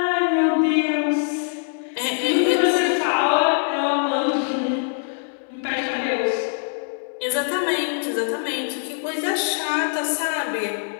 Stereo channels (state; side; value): silent; right; digital silence